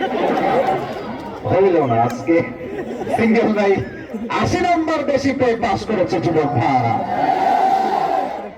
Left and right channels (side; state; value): both; identical; correlation 1.00